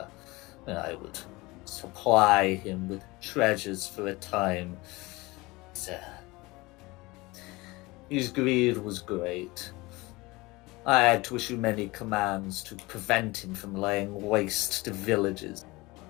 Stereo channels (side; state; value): right; quieter; 22.4 dB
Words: I would supply him with treasures for a time. His greed was great. I had to issue many commands to prevent him from laying waste to villages.